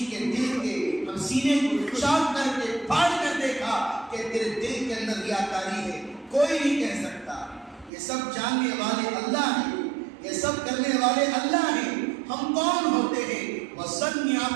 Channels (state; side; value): drops out; left; at 7.9 s